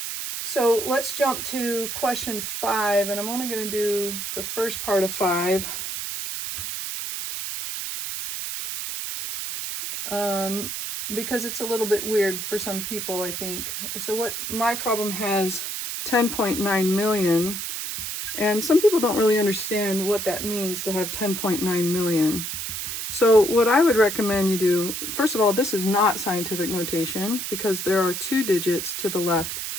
So let's jump to question 5, and I'm only going to do the first part of 5. Because it's a little bit weird for some people, I think. So what my problem has 10.9 million, and some people don't really understand what that means to have 10.9 million. So what I would recommend you do, first of all, this is not scientific notation because there are 2 digits to the left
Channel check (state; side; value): noise; right; hiss, 5 dB below the sound